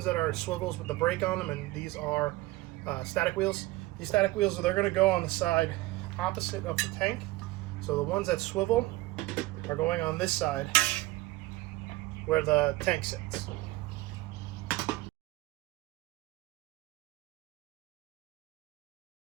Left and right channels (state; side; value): quieter; left; 19.4 dB